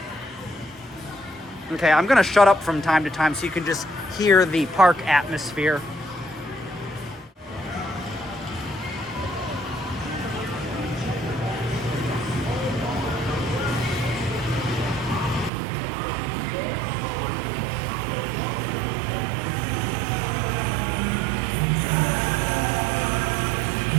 Okay, I'm gonna shut up from time to time so you can just hear the park atmosphere.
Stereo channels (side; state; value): left; drops out; at 15.5 s